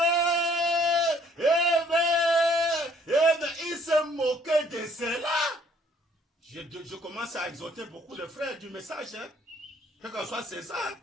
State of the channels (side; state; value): both; normal; correlation 0.62